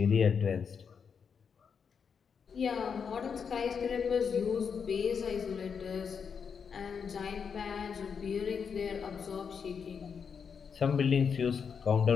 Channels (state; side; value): quieter; right; 6.4 dB